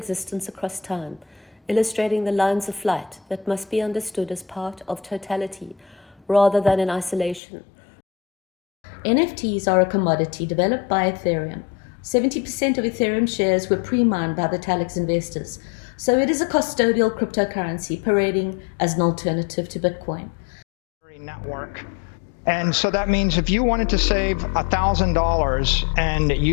across time, illustrating the lines of flight that must be understood as part of totality rather than in isolation. NFTs are a commodity developed by Ethereum. 70% of Ethereum shares were pre-mined by the Talix investors, so it is a custodial cryptocurrency parading as an alternative to Bitcoin. Network. And so that means if you wanted to save $1,000 and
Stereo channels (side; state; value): right; drops out; at 7.4 s